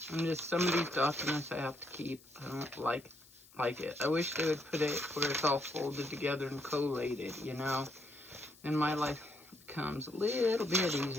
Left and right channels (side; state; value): left; noise; hiss, 25 dB below the sound